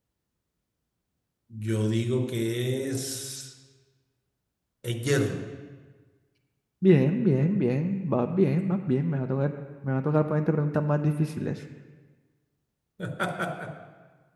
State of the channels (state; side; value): identical; both; correlation 1.00